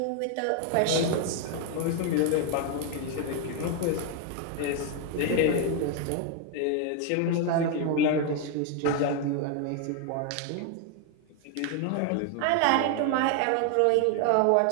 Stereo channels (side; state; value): both; different; correlation 0.01